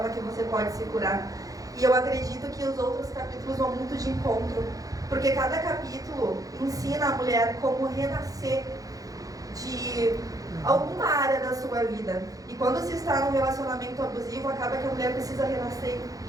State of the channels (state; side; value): late; left; 0.17 ms